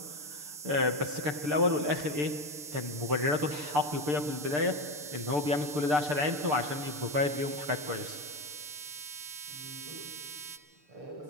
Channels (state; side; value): late; left; 6.8 ms